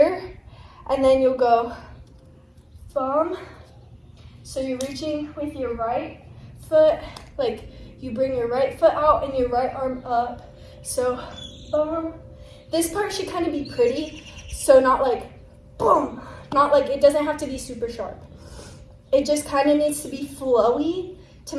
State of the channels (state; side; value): identical; both; correlation 1.00